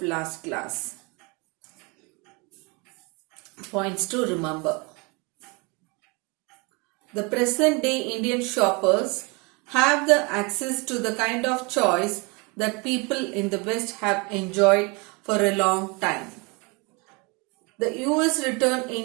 last class. Points to remember. The present day Indian shoppers have the access to the kind of choice that people in the West have enjoyed for a long time. The US returned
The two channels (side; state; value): left; quieter; 29.2 dB